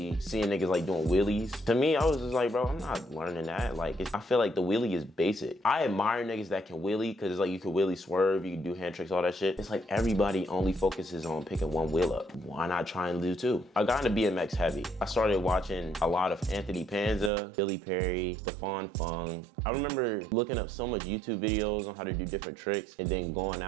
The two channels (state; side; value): drops out; left; at 17.3 s